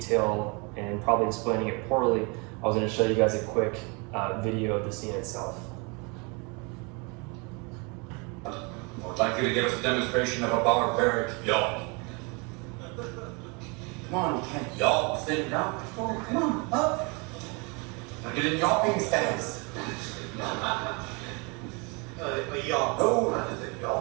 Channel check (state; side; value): quieter; left; 30.7 dB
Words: and probably explaining it poorly, I was going to show you guys a quick video of the scene itself. I'd like you to give us a demonstration of a barbaric yawp. Come on, Ken. Yawp? Sit down. Oh, come on, up. Now get in yawping stance. A yawp. No, that is a